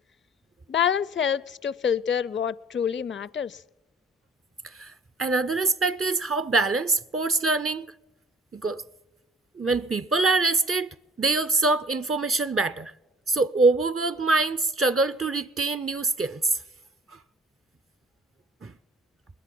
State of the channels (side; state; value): both; normal; correlation 0.51